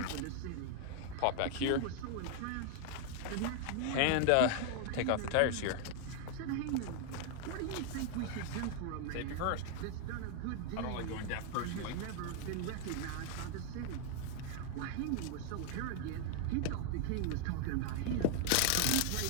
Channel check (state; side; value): different; both; correlation 0.00